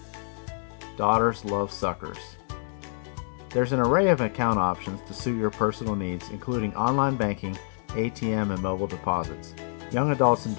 Daughters love suckers. There's an array of account options to suit your personal needs, including online banking, ATM, and mobile deposits. Young adults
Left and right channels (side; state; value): right; silent; 60 dB below the other